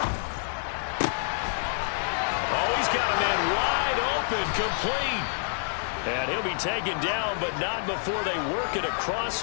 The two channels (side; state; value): right; silent; digital silence